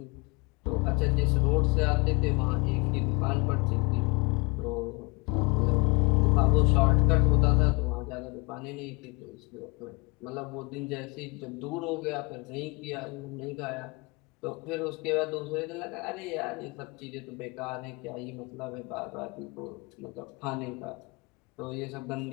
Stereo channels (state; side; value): quieter; right; 28.4 dB